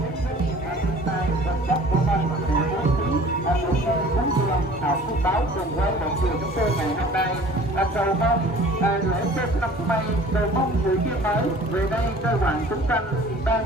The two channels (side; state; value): both; normal; correlation 0.48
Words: báo cùng với mọi người chúng tôi ngày hôm nay cầu mong lễ Tết năm nay cầu mong người kia mới về đây kêu gọi chúng sanh ban